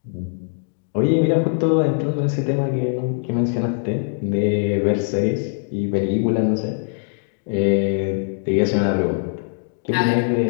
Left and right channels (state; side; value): silent; right; digital silence